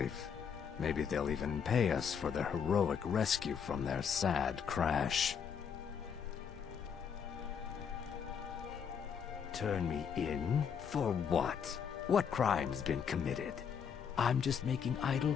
Maybe they'll even pay us for their heroic rescue from their sad crash. Turn me in? For what? What crime's been committed? I'm just making idle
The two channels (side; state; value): right; quieter; 7.2 dB